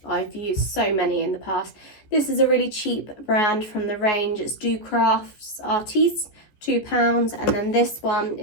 I've used so many in the past. This is a really cheap brand from the range. It's Do Crafts Artiste, £2, and then this one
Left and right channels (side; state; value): right; late; 14 ms